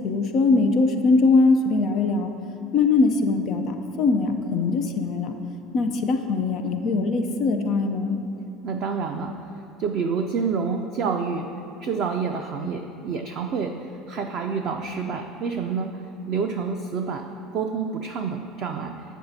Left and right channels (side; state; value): both; normal; correlation 0.47